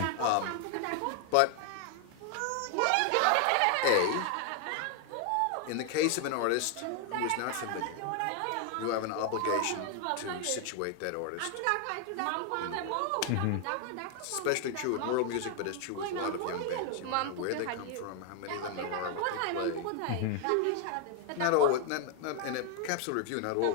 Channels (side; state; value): both; different; correlation 0.00